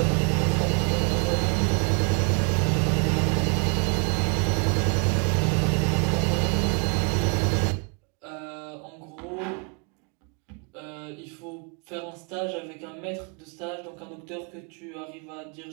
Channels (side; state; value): left; quieter; 36.2 dB